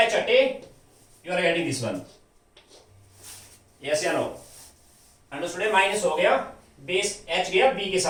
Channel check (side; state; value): both; identical; correlation 1.00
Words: एच हटे, you are getting this one, yes या नो, अंडरस्टूड। माइनस हो गया, बेस एच गया बी के